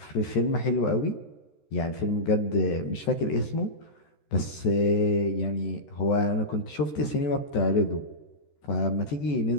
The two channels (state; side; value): late; right; 13 ms